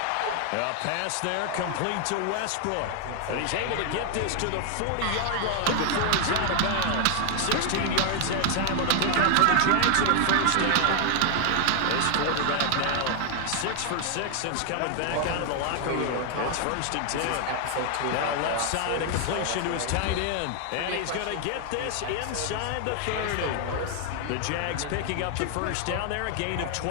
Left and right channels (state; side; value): different; both; correlation 0.00